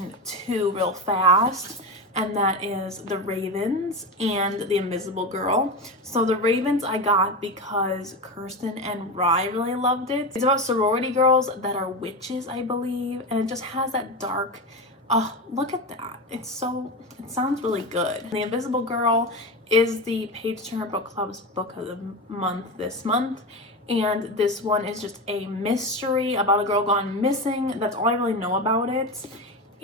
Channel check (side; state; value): both; normal; correlation 0.20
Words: two real fast, and that is The Ravens and The Invisible Girl. So The Ravens I got because Kirsten and Rye really loved it. It's about sorority girls that are witches, I believe, and it just has that dark, oh, look at that. It sounds really good. The Invisible Girl is the Page Turner Book Club's book of the month this month. And this one is just a mystery about a girl gone missing. That's all I really know about it.